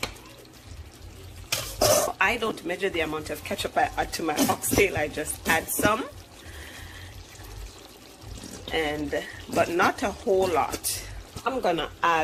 I don't measure the amount of ketchup I add to my oxtail. I just add some. But not a whole lot. I'm gonna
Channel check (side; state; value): both; identical; correlation 1.00